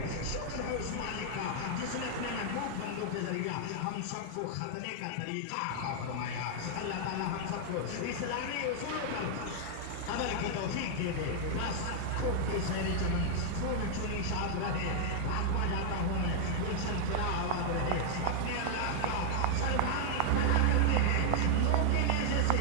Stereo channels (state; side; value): different; both; correlation 0.00